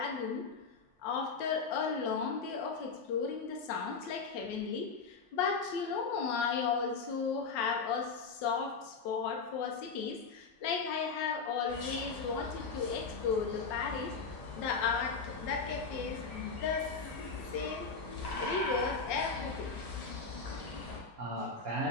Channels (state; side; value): quieter; right; 4.9 dB